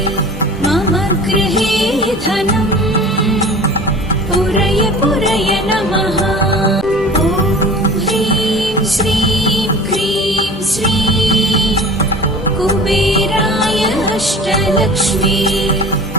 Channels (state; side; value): normal; both; correlation 0.40